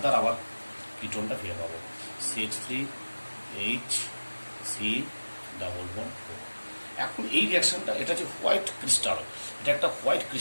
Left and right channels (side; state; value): both; inverted; correlation -1.00